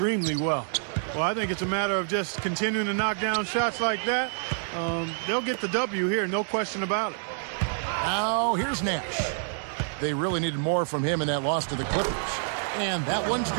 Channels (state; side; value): silent; left; digital silence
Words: well. Well, I think it's a matter of just continuing to knock down shots like that. They'll get the W here, no question about it. Now, here's Nash. They really needed more from him in that loss to the Clippers. And that one's